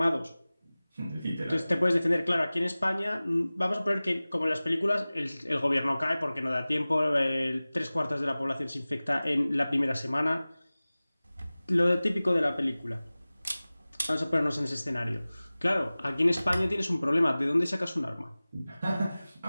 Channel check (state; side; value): inverted; both; correlation -0.98